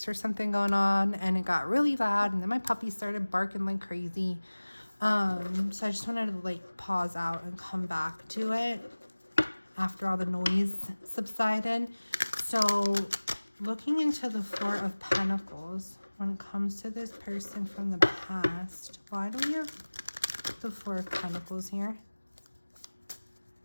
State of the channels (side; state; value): both; inverted; correlation -1.00